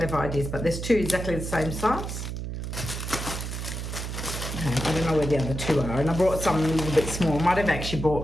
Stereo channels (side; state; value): right; noise; hum, 5 dB below the sound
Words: ideas. But there's 2 exactly the same size. Okay, I don't know where the other 2 are. And I brought some a little bit small. I might have actually